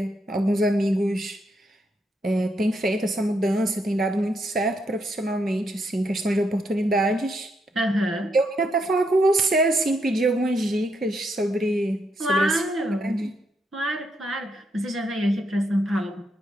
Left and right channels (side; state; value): both; normal; correlation 0.78